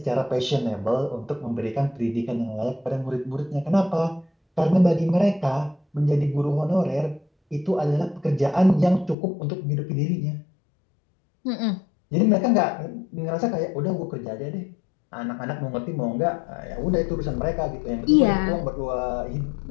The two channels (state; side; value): drops out; right; at 9.2 s